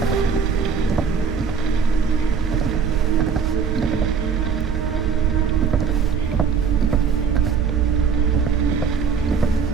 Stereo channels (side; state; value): left; quieter; 6.3 dB